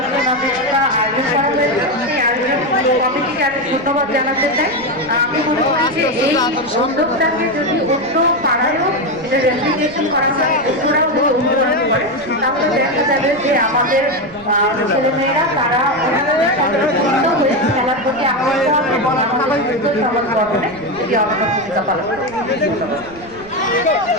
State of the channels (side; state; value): right; noise; rumble, 22 dB below the sound